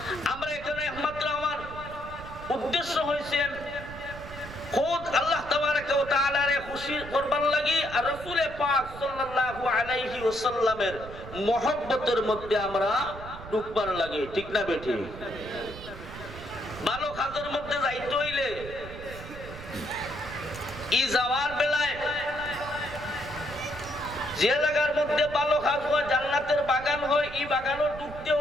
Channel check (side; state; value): right; noise; rumble, 13 dB below the sound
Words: আমরা এখানে একমাত্র আমার উদ্দেশ্য হয়েছে খোদ আল্লাহ তাবারাকা ওয়া তাআলারে খুশি করবার লাগি আর রাসূল পাক সাল্লাল্লাহু আলাইহি ওয়াসাল্লামের মহব্বতের মধ্যে আমরা ঢুকবার লাগি, ঠিক না বেটি? ভালো কাজের মধ্যে যাইতে হইলে ই যাওয়ার বেলায় যে জায়গার মধ্যে ভালো কাজ হয়, জান্নাতের বাগান হয়, এই বাগানও ঢুকতে